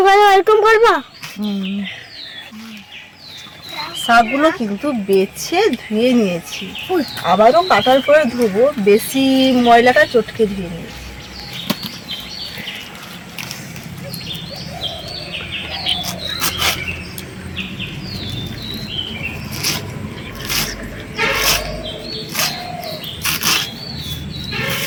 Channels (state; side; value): identical; both; correlation 1.00